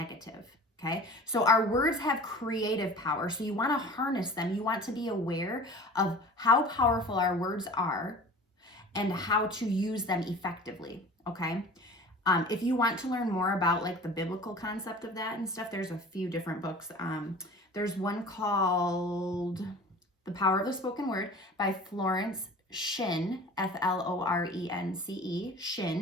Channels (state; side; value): normal; both; correlation 0.41